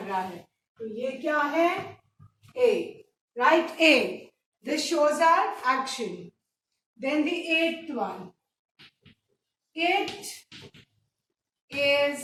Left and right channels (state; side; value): identical; both; correlation 1.00